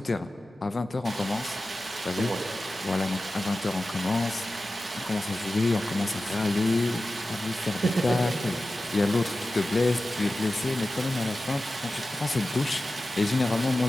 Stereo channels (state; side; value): normal; both; correlation 0.94